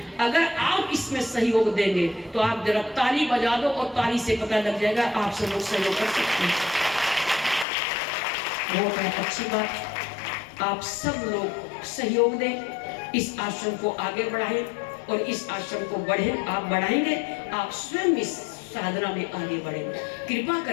अगर आप इसमें सहयोग देंगे तो आप जरा ताली बजा दो, और ताली से पता लग जाएगा आप सब लोग सहयोग कर सकते हैं। बहुत अच्छी बात, आप सब लोग सहयोग दें, इस आश्रम को आगे बढ़ाएं, और इस आश्रम को आप बढ़ाएंगे, आप स्वयं इस साधना में आगे बढ़ेंगे, कृपा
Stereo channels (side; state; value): right; drops out; at 7.7 s